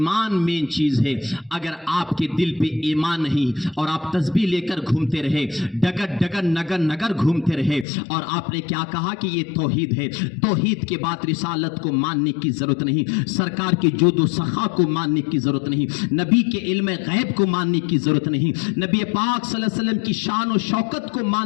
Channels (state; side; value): drops out; right; at 7.9 s